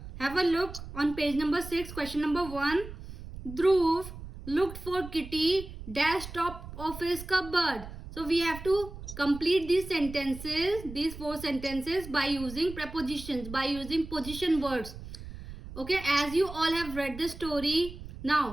a look on page number 6, question number 1. Dhruv looked for Kitty dash top of his cupboard. So we have to complete these sentences, these 4 sentences by using prepositions, by using position words. Okay, as you all have read the story,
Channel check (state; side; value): noise; right; rumble, 12 dB below the sound